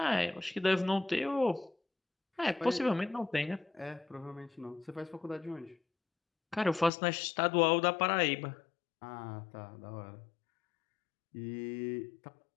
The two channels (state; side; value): drops out; right; at 6.9 s